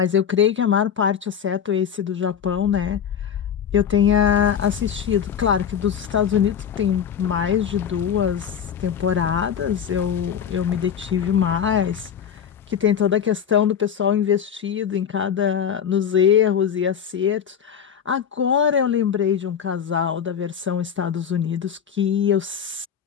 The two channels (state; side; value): quieter; right; 8.2 dB